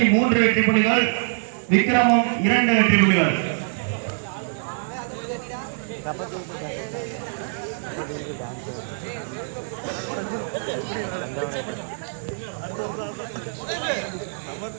வெற்றி புள்ளிகள், விக்ரமம் 2 வெற்றி புள்ளிகள்.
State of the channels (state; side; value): silent; left; digital silence